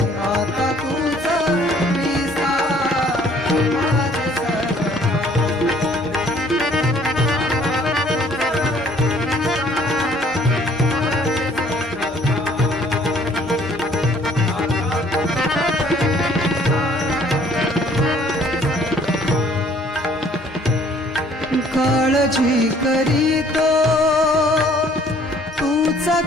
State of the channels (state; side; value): normal; both; correlation 0.59